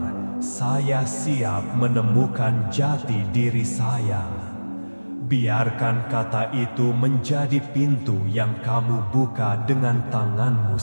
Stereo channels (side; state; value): both; inverted; correlation -1.00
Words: Saya siap menemukan jati diri saya. Biarkan kata itu menjadi pintu yang kamu buka dengan tanganmu